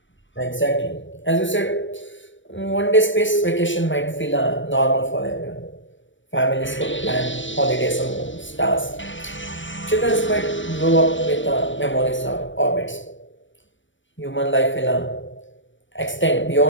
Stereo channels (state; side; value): late; right; 0.55 ms